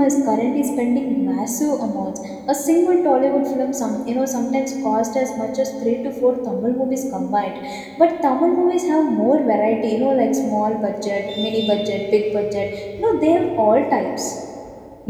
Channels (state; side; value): identical; both; correlation 1.00